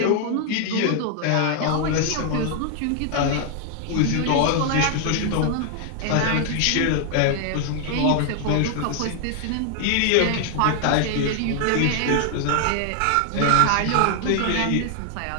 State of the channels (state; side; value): different; both; correlation 0.00